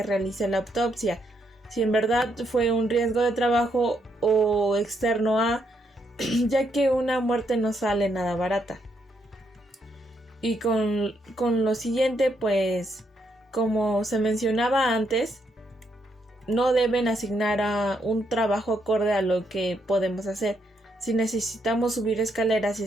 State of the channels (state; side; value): normal; both; correlation 0.77